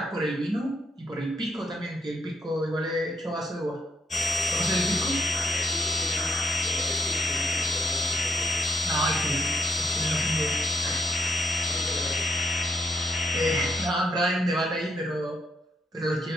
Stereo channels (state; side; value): normal; both; correlation 0.75